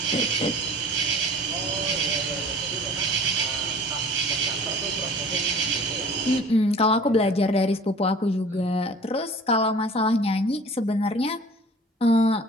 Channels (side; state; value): both; normal; correlation 0.47